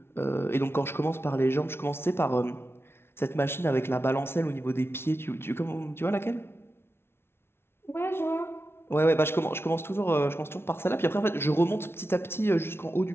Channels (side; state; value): right; late; 0.12 ms